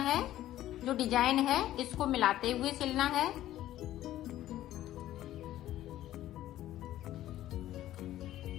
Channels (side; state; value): right; quieter; 13.7 dB